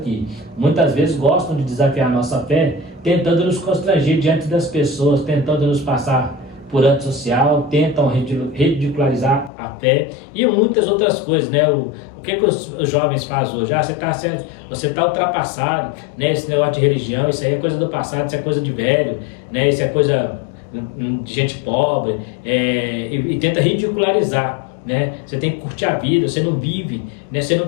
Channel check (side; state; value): right; drops out; at 9.5 s